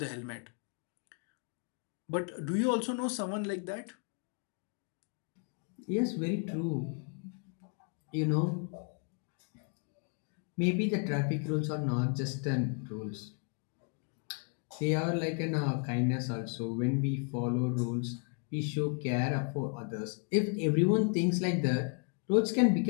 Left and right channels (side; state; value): right; quieter; 39.2 dB